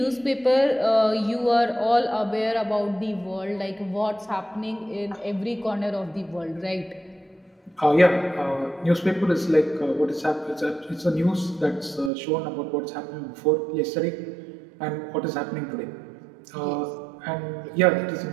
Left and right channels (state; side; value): drops out; left; at 12.1 s